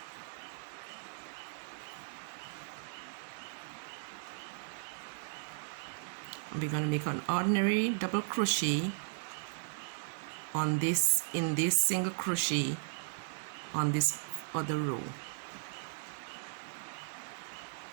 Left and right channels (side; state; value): left; silent; digital silence